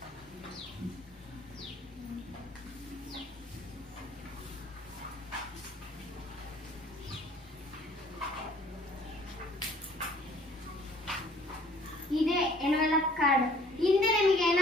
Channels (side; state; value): both; normal; correlation 0.55